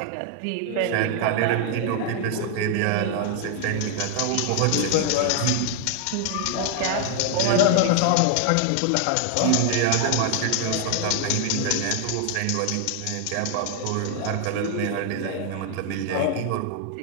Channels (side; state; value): both; different; correlation 0.00